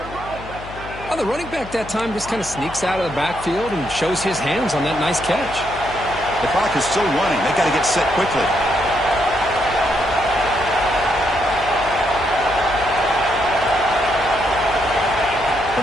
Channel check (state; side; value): noise; left; hum, 14 dB below the sound